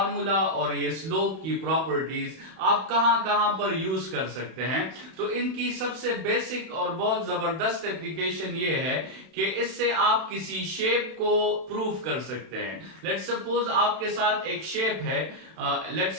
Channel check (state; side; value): late; left; 31 ms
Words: और ये स्लोप की प्रॉपर्टीज आप कहां कहां पर यूज कर सकते हैं। तो इनकी सबसे बेसिक और बहुत जबरदस्त एप्लीकेशन ये है कि इससे आप किसी शेप को प्रूव कर सकते हैं। लेट्स सपोज आपके साथ एक शेप है,